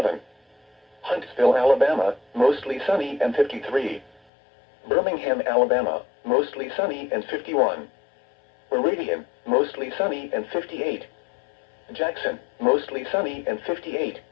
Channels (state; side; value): drops out; right; at 4.2 s